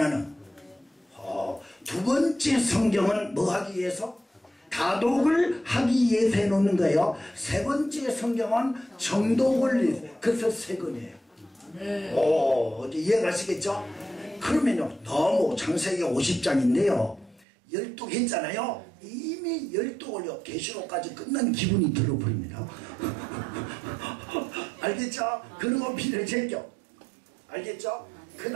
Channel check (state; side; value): drops out; left; at 17.4 s